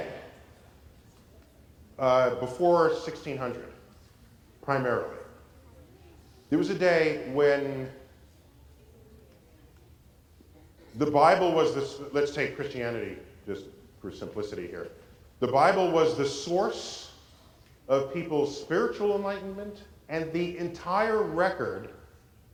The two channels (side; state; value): both; identical; correlation 1.00